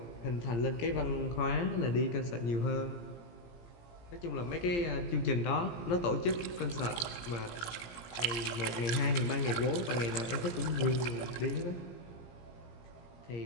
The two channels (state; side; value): late; right; 17 ms